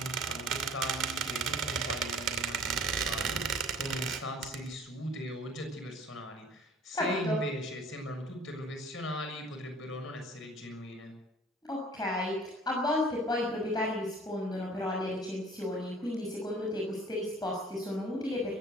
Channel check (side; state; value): both; normal; correlation 0.50